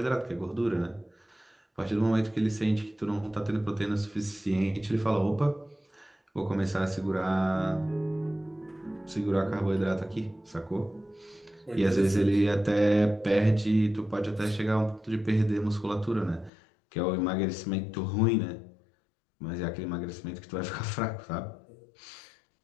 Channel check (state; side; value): drops out; right; at 16.5 s